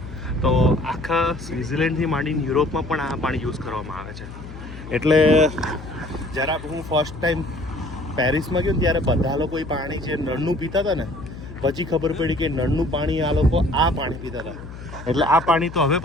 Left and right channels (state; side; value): noise; left; hum, 13 dB below the sound